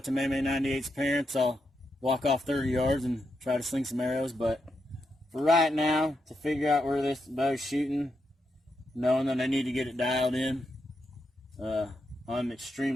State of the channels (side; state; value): both; normal; correlation 0.83